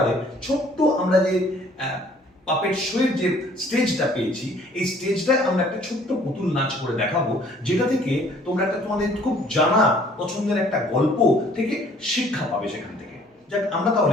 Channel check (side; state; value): both; normal; correlation 0.57